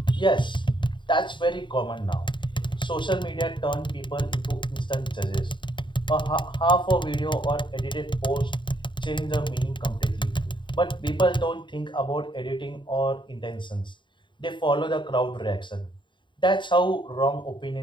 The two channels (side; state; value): right; late; 0.23 ms